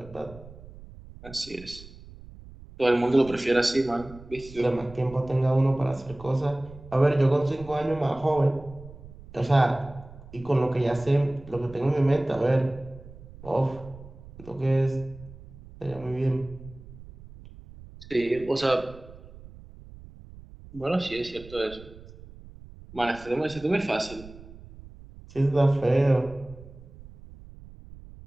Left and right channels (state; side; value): noise; right; rumble, 18 dB below the sound